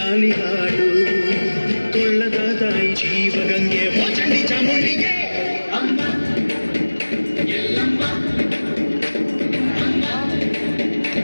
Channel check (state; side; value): inverted; both; correlation -1.00